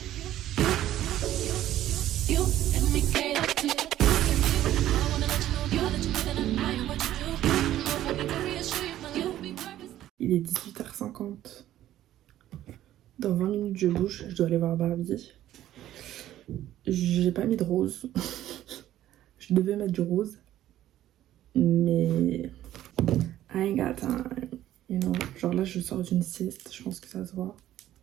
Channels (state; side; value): quieter; left; 13.1 dB